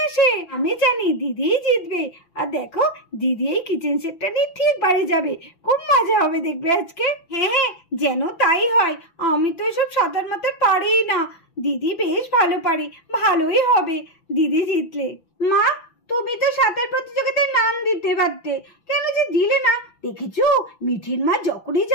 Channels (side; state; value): right; late; 5.9 ms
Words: আসে। আমি জানি দিদি জিতবে। আর দেখো দিদি এই কিচেন সেটটা নিয়ে ঠিক বাড়ি যাবে, খুব মজা হবে দেখবে আজকে। হ্যাঁ যেন তাই হয়। আমি তো এসব সাঁতার মাতার পারি না, দিদি বেশ ভালো পারে, ভালোই হবে দিদি জিতলে। মা তুমি তো সাঁতার প্রতিযোগিতায় নাম দিতে পারতে, কেন যে দিলে না? দেখেছো মিঠির মা যখনই